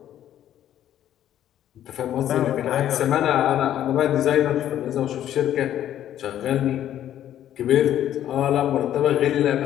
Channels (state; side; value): quieter; right; 11.4 dB